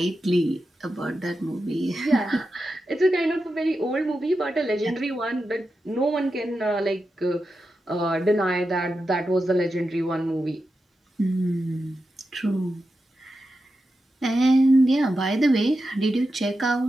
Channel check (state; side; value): normal; both; correlation 0.89